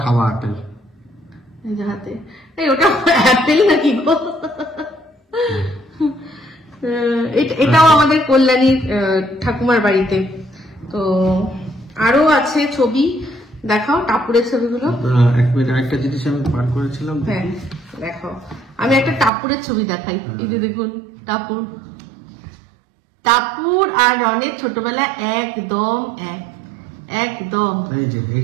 খাওয়া অ্যাপেল, এই যে হাতে, এই ওটা অ্যাপেল নাকি গো? এটাও আমাদের কল্যাণীর ঠাকুমার বাড়িতে। তো আরো আছে ছবি, দেখাও টাপুরের ছবিগুলো। এক মিনিট, একটা জিনিস আমি পার করেছিলাম। হ্যাঁ, দেখাও। আমি একটা টাপুরের ছবি দেখাই। এই যে দেখুন, টাপুর আর রনের ছোটবেলা একদম একদম। এই যে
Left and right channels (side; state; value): left; drops out; at 19.3 s